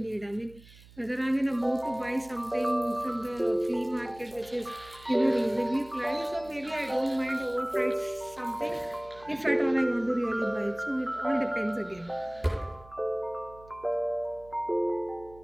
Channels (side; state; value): right; noise; hum, 22 dB below the sound